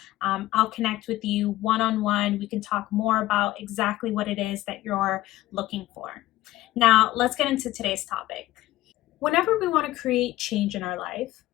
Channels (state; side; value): quieter; right; 16.2 dB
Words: I'll connect with you one-on-one. We can talk more about exactly what it is that you're looking for. Now, let's get into today's topic. Whenever we want to create change in our life,